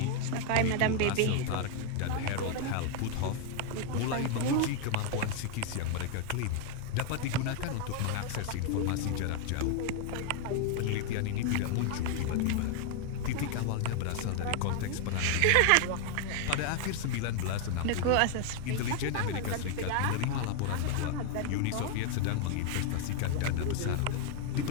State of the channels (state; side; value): different; both; correlation 0.00